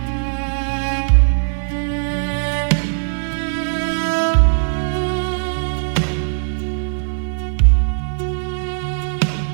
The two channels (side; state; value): left; silent; digital silence